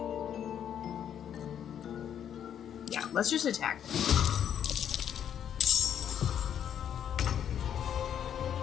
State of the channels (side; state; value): right; quieter; 9.3 dB